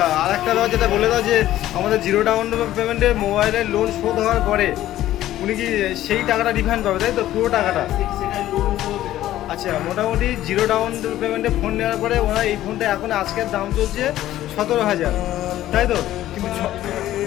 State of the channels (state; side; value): quieter; right; 13.8 dB